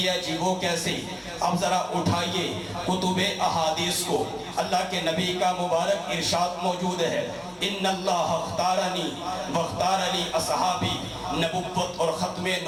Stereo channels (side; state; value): both; identical; correlation 1.00